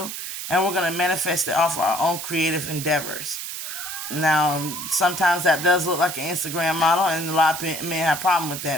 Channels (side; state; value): right; noise; hiss, 7 dB below the sound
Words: and we're going to manifest it off our own creative endeavors. Now, sometimes that does look like an Instagram model, and a lot of men have a problem with